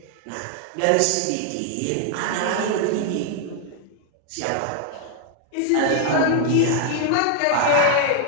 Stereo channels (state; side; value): different; both; correlation 0.00